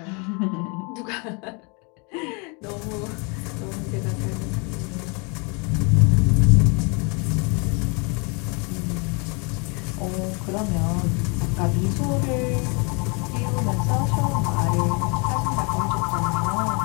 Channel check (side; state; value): right; quieter; 32.5 dB